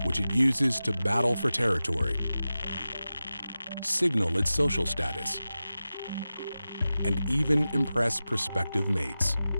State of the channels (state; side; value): inverted; both; correlation -0.94